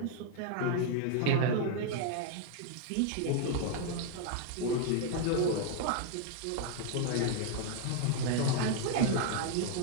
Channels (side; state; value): both; different; correlation 0.00